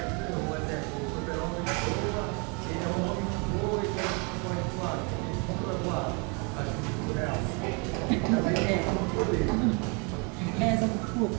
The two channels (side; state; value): left; quieter; 33.2 dB